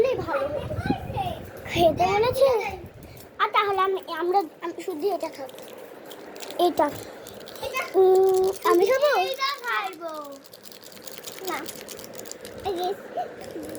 ভালো হতো, খেতে বলেছে। আর তাহলে আমরা শুধু এটা খাবো। এটা আমি খাবো না।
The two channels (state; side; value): identical; both; correlation 1.00